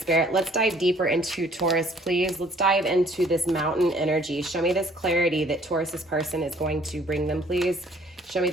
let's dive deeper into Taurus, please. Let's dive into this mountain energy. Show me this clarity that Taurus's person is going to bring them, please. Show me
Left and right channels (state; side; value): normal; both; correlation 0.58